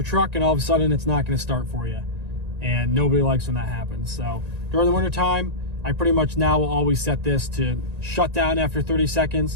truck and all of a sudden it's not going to start for you. And nobody likes when that happens. So during the winter time, I pretty much now will always set this to shut down after 30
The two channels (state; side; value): late; left; 1.9 ms